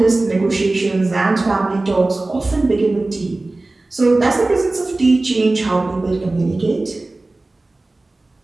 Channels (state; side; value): quieter; left; 3.0 dB